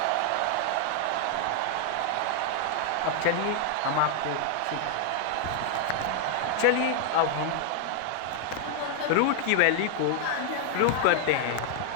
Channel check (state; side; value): different; both; correlation 0.00